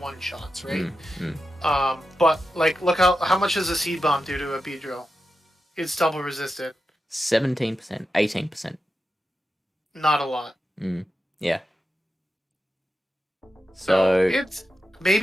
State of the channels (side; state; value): both; normal; correlation 0.90